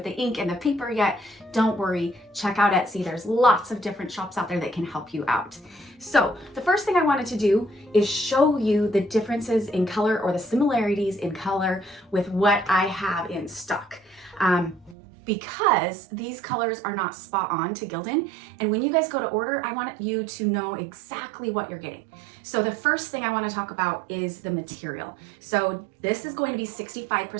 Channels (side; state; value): left; drops out; at 15.0 s